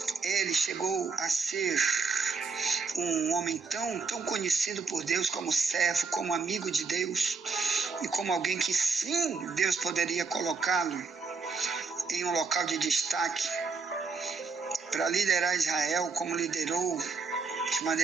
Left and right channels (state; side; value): quieter; left; 4.7 dB